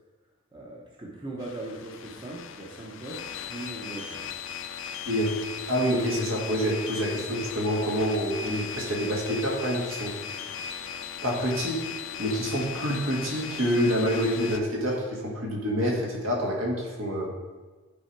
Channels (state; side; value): normal; both; correlation 0.31